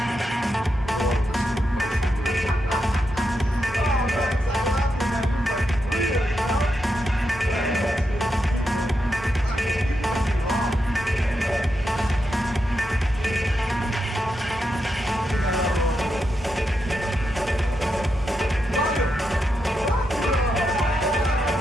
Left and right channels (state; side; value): normal; both; correlation 0.85